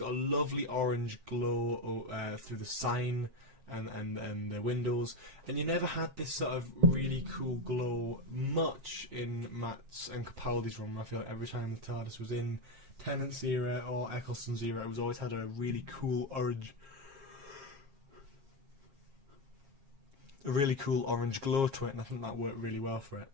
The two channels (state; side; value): late; left; 7.4 ms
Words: a lovely orange glow through the sign and the windows, and you never had this sort of really cool glow much in Matt's and Capaldi's run. I feel like every time the TARDIS was in Tennant's era or Eccleston's era, it was always had a really cool orange glow to it, and I think that worked really well for it.